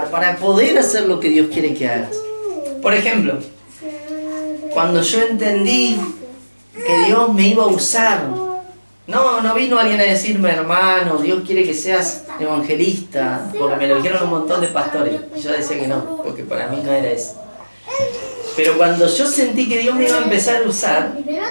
para poder hacer lo que Dios quiere que hagas. Por ejemplo, cuando yo entendí que Dios me iba a usar, no vino alguien a decirme, hermano, Dios quiere que seas evangelista, porque me lo dijeron un montón de pastores. Y yo decía que no, porque para mí no era eso. Pero cuando yo sentí que Dios me iba a empezar a usar,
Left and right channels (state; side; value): inverted; both; correlation -1.00